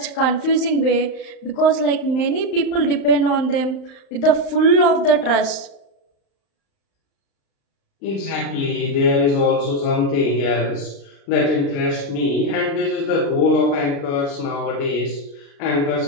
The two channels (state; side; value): late; right; 35 ms